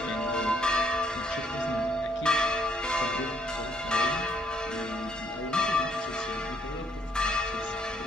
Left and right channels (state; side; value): normal; both; correlation 0.70